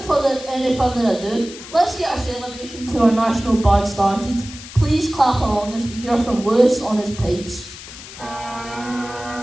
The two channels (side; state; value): left; noise; hiss, 15 dB below the sound